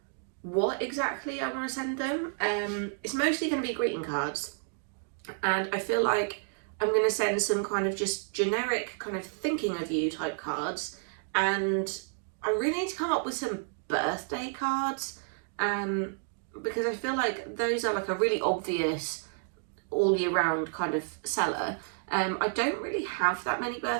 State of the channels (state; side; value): silent; left; digital silence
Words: what exactly I want to send them. It's mostly going to be greeting cards. And I feel like I'm going to send some kind of just generic kind of thinking of you type cards. And I really need to come up with some birthday cards, because I feel like those are like a really obvious all year round kind of seller. I don't really have that many